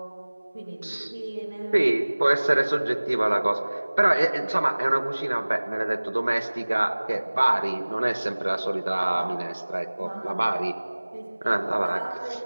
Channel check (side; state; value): both; inverted; correlation -1.00